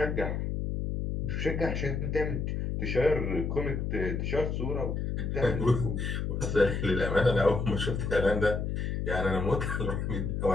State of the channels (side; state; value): left; noise; hum, 1 dB below the sound